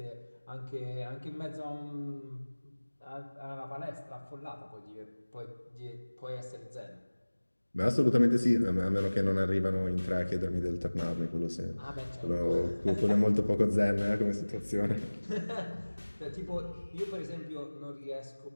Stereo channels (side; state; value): both; inverted; correlation -1.00